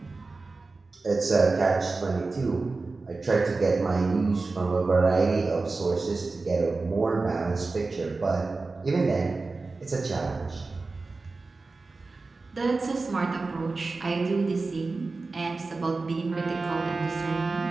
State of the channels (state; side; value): quieter; left; 3.7 dB